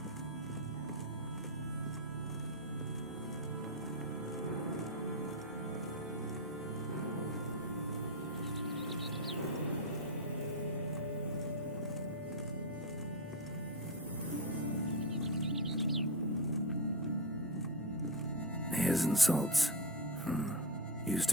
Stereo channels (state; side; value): normal; both; correlation 0.10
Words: Hairs and salts. Used